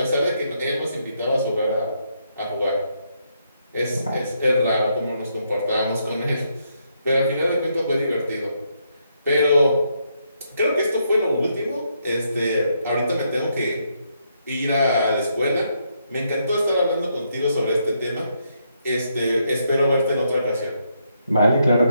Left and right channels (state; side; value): inverted; both; correlation -0.77